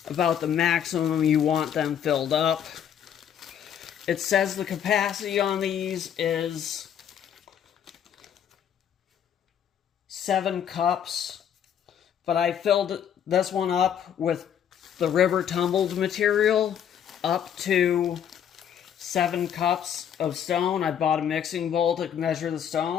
about the maximum you want them filled up. It says the capacity on these is 7 cups, but I filled this one up with the river tumbled material up to 7 cups of stone. I bought a mixing bowl to measure the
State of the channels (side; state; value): right; quieter; 9.0 dB